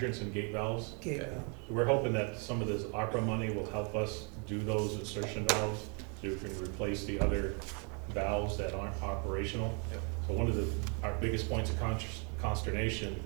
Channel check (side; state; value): left; quieter; 36.7 dB